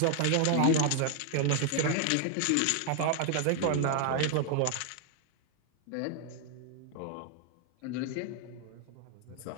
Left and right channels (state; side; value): different; both; correlation 0.00